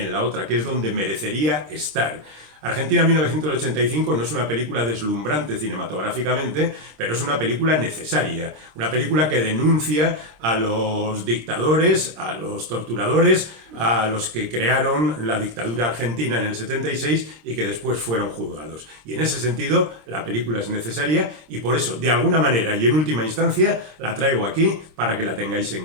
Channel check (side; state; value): left; late; 26 ms